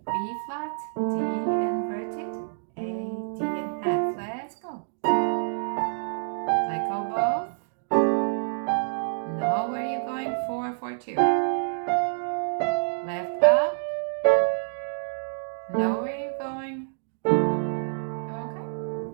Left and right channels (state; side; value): silent; left; digital silence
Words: B flat, D inverted, A, D, and F. Let's go. Let go both. Know where you're going, 4, 4, 2. Left up. Know where you're going. Okay.